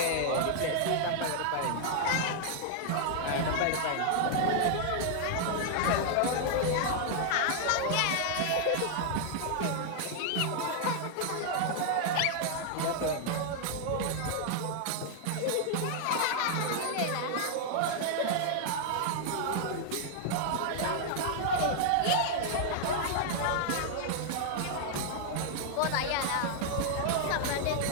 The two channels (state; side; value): different; both; correlation 0.00